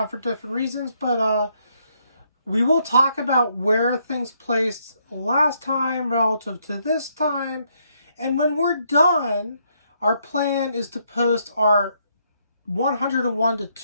for different reasons, but we will talk about where things placed last time relative to this time. And when we're done, our plan is to post our 101 to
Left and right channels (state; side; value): inverted; both; correlation -0.73